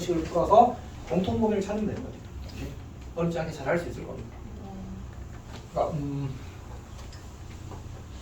풀어서 공통 범위를 찾으면 되는 거죠. 어렵지 않게 잘 할 수 있을 겁니다. 그러니까,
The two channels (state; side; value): identical; both; correlation 1.00